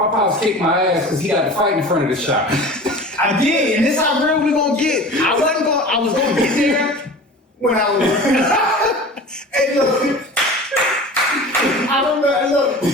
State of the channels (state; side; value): normal; both; correlation 0.38